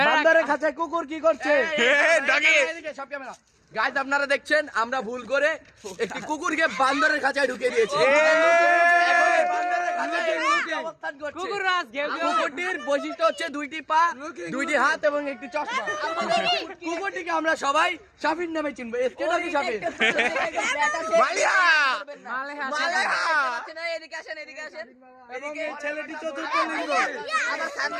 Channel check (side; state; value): both; identical; correlation 1.00